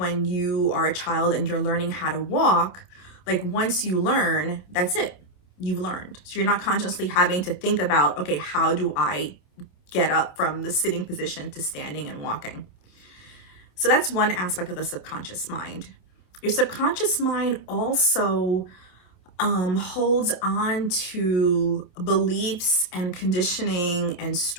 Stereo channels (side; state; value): right; late; 27 ms